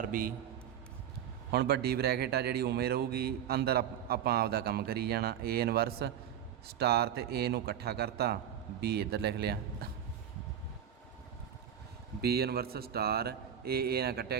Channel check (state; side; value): quieter; left; 9.6 dB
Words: ਬੀ। ਹੁਣ ਵੱਡੀ ਬ੍ਰੈਕਟ ਆ ਜਿਹੜੀ ਉਵੇਂ ਰਹੂਗੀ, ਅੰਦਰ ਆਪਾਂ ਆਪਦਾ ਕੰਮ ਕਰੀ ਜਾਣਾ। ਏ ਇਨਵਰਸ ਸਟਾਰ ਤੇ ਏ ਨੂੰ ਇਕੱਠਾ ਕਰਤਾ, ਬੀ ਇੱਧਰ ਲਿਖ ਲਿਆ, ਬੀ ਇਨਵਰਸ ਸਟਾਰ ਏ ਨਾਲ ਕੱਟਿਆ